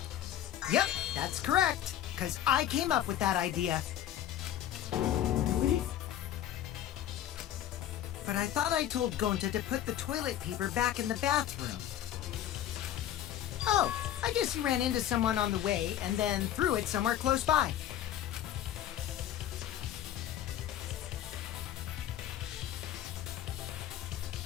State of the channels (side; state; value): right; quieter; 11.5 dB